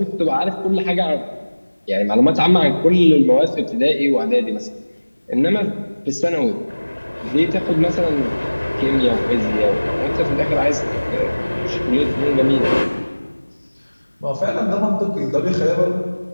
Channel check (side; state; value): both; inverted; correlation -1.00